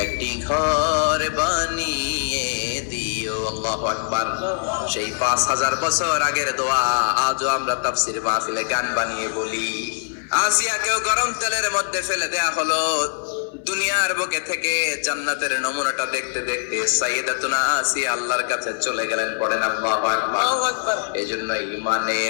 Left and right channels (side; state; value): right; silent; digital silence